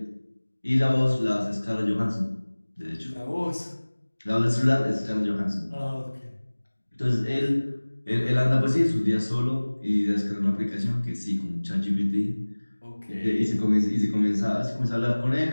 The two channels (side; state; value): both; inverted; correlation -1.00